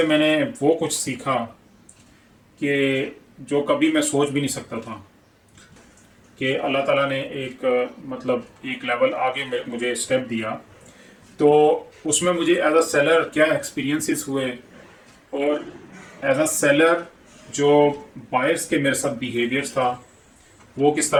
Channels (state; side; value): identical; both; correlation 1.00